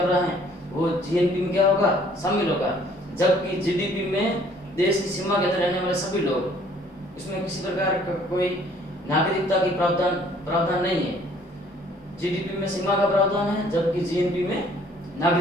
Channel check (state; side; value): normal; both; correlation 0.59